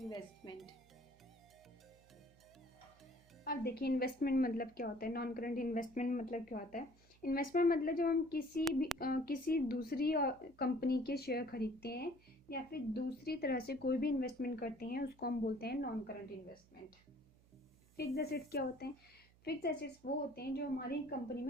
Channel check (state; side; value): noise; right; hum, 28 dB below the sound